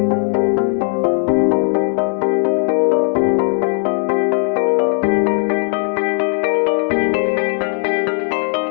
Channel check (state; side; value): silent; right; digital silence